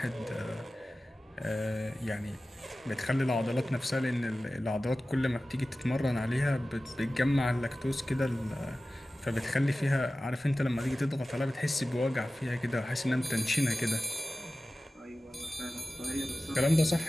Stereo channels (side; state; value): both; normal; correlation 0.96